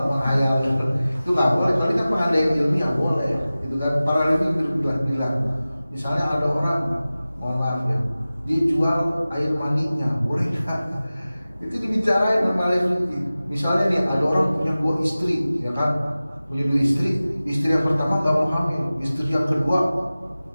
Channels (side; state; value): both; inverted; correlation -0.97